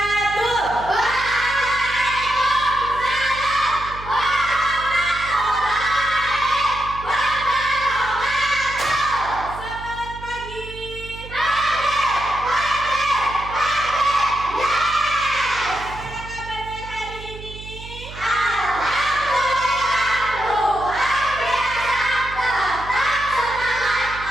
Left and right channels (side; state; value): right; noise; hum, 14 dB below the sound